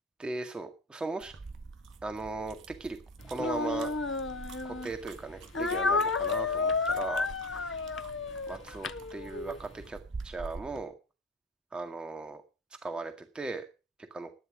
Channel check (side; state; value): both; normal; correlation 0.32